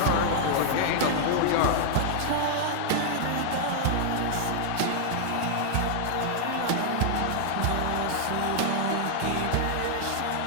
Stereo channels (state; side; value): different; both; correlation -0.01